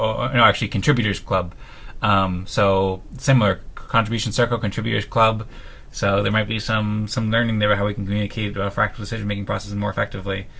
contributors club. So similar contribution circle, contributors club. So there might be some learning there about how we can communicate fractal decision making processes more effectively.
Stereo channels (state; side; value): identical; both; correlation 1.00